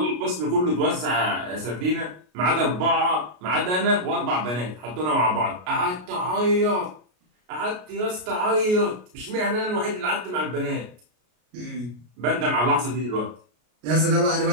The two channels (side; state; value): left; late; 33 ms